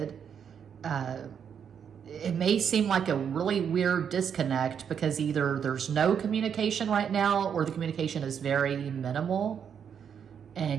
It may seem like a really weird disconnect because either there's no communication right now or the communication is very minimal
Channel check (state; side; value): quieter; left; 7.7 dB